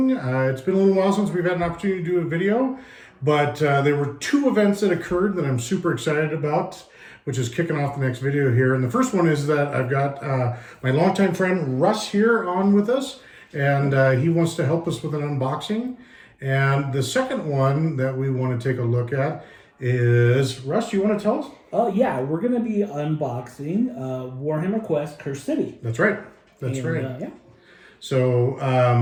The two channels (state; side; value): identical; both; correlation 1.00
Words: It's been a little while since we've had an opportunity to do a video, but there were two events that occurred that I'm super excited about, which is kicking off the next video here. And the first one is that I've got my longtime friend Russ here on with us, and he wants to help us with an unboxing. And the second one that we want to take a look at is, Russ, you want to tell us? Yeah, we're going to be unboxing Warhammer Quest Cursed City. That's right. That's right. Yeah. So